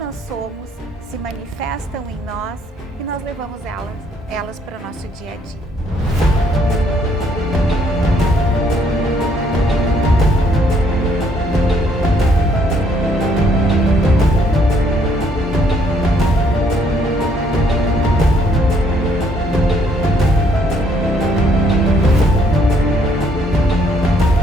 somos se manifestam em nós e nós levamos elas para o nosso dia a dia?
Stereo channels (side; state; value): both; normal; correlation 0.67